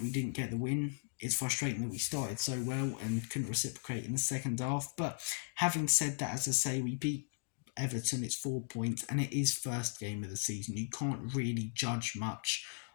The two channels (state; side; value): silent; right; digital silence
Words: we didn't get the win. It's frustrating that we started so well and couldn't reciprocate in the second half. But having said that, as I say, we beat Everton. It's 4 points and it is first game of the season. You can't really judge much